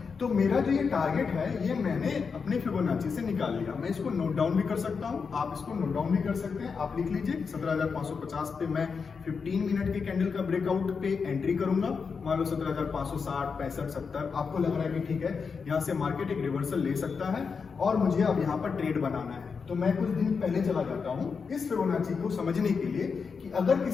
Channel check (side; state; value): right; quieter; 5.5 dB